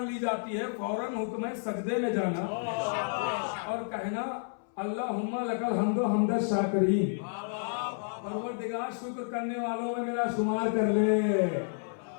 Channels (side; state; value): right; silent; 57 dB below the other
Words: ली जाती है फौरन हुक्म है सजदे में जाना और कहना अल्लाहुम्मा लकल हम्दो हम्द शाकिरीन, परवरदिगार शुक्र करने वालों में मेरा शुमार कर ले।